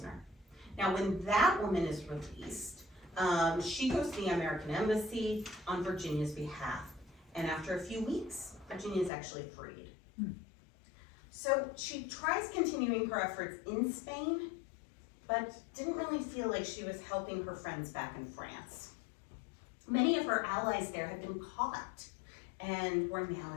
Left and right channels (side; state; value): right; drops out; at 9.1 s